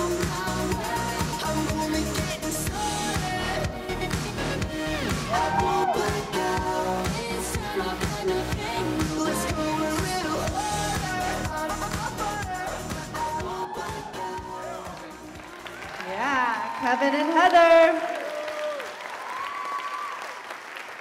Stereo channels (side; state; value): both; identical; correlation 1.00